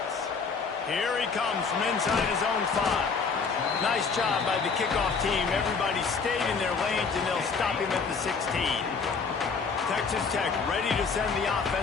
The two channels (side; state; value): right; quieter; 5.1 dB